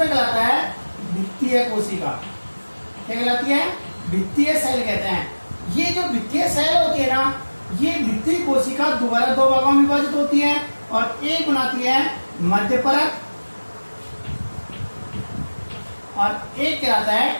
कहलाता है भित्तीय कोशिका, क्या कहलाती है, भित्तीय सेल कहते हैं। ये जो भित्तीय सेल होती है ना, ये भित्तीय कोशिका दोबारा 2 भागों में विभाजित होती है, और एक बनाती है मध्य परत, और एक कहलाता है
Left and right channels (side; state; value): both; inverted; correlation -1.00